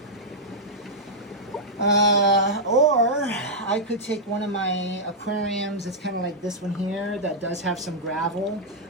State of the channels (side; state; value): both; normal; correlation -0.08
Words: Or I could take one of my aquariums. It's kind of like this one here that does have some gravel,